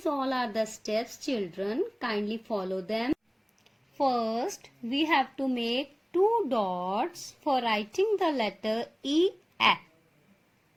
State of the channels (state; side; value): identical; both; correlation 1.00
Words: all are the steps, children. Kindly follow them. First, we have to make 2 dots for writing the letter E, A.